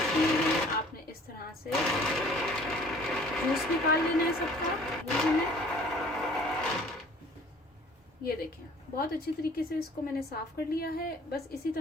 किए हैं आपने इस तरह से जूस निकाल लेना है सबका। ये देखें बहुत अच्छी तरीके से इसको मैंने साफ कर लिया है। बस इसी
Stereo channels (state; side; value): normal; both; correlation 0.52